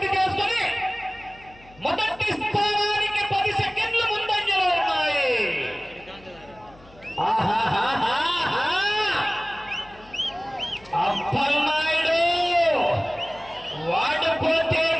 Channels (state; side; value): noise; left; hum, 25 dB below the sound